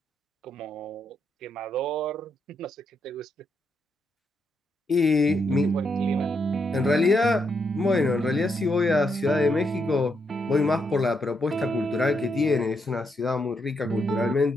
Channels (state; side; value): normal; both; correlation 0.79